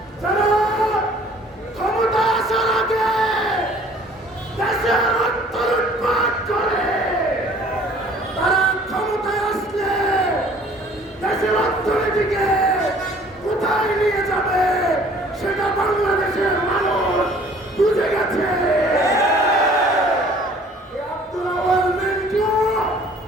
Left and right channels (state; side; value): normal; both; correlation 0.54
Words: যারা ক্ষমতা আসার আগে দেশের অর্থ লুটপাট করে, তারা ক্ষমতায় আসলে দেশের অর্থনীতিকে কোথায় নিয়ে যাবে সেটা বাংলাদেশের মানুষ বুঝে গেছে। আব্দুল আওয়াল মিন্টু